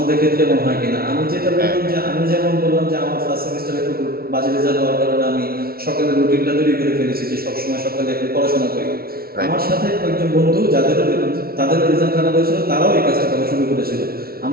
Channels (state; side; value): late; left; 0.44 ms